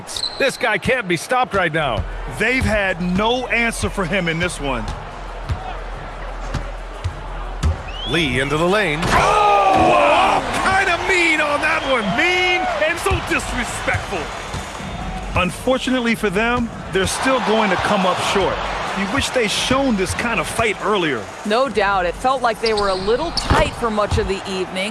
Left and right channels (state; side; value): identical; both; correlation 1.00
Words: This guy can't be stopped right now. They've had no answer for him in this one. Lee into the lane. Oh! Kind of mean on that one. Mean and so little disrespectful. Unfortunately for them, they're still going to come up short. You wish they'd shown this kind of fight earlier. No doubt. It felt like they were a little tight for much of the